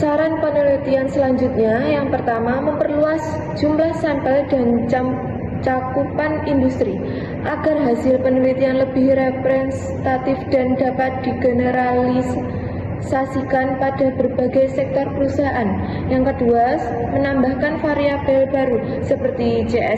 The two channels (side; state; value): both; identical; correlation 1.00